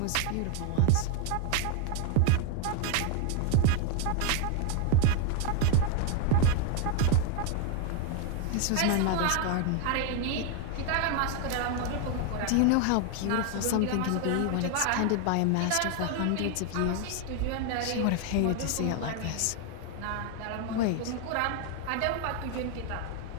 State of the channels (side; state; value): both; different; correlation 0.01